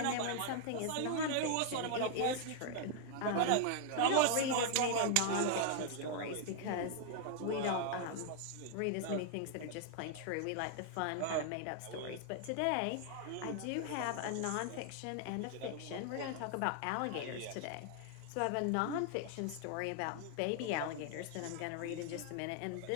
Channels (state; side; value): different; both; correlation 0.00